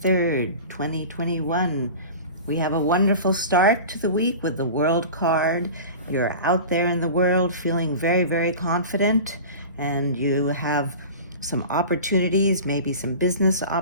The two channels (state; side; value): inverted; both; correlation -0.36